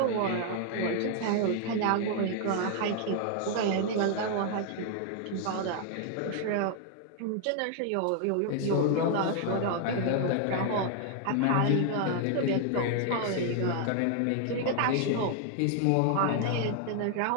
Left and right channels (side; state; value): both; different; correlation 0.00